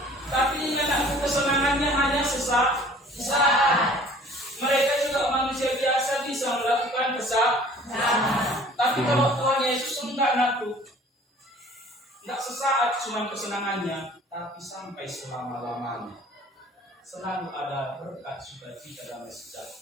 Tapi anakku kesenangannya hanya sesaat. Mereka juga manusia biasa bisa melakukan kesalahan. Tapi kalau Tuhan Yesus enggak anakku, enggak sesaat cuma kesenangannya, tapi sampai selama-lamanya. Selalu ada berkat, sukacita, damai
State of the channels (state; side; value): normal; both; correlation 0.50